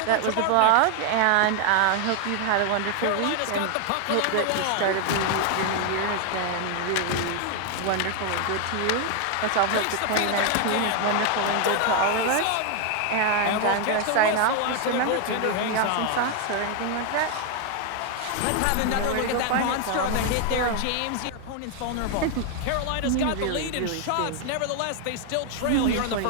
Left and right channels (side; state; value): both; different; correlation 0.01